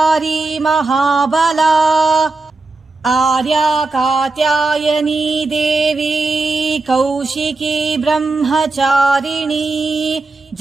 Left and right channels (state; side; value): quieter; left; 3.5 dB